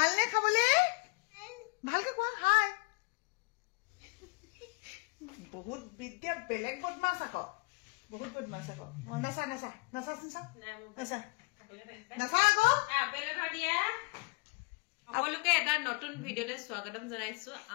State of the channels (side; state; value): right; quieter; 29.7 dB